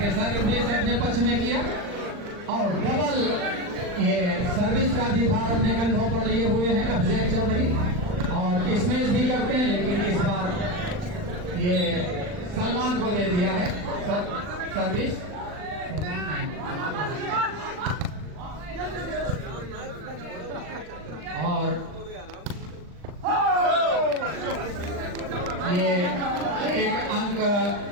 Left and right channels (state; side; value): late; left; 39 ms